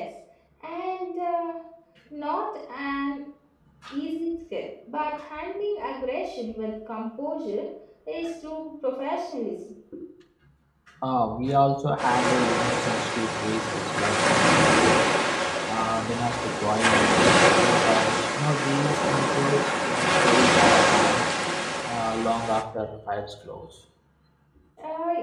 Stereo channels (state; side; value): identical; both; correlation 1.00